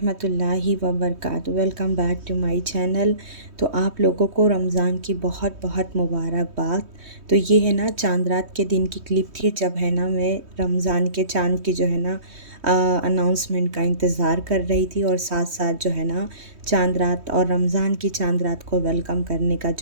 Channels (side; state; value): left; late; 3.2 ms